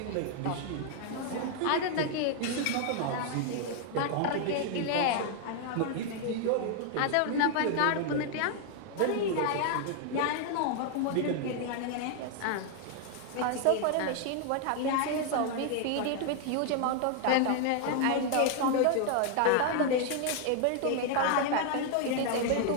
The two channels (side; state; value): both; different; correlation 0.00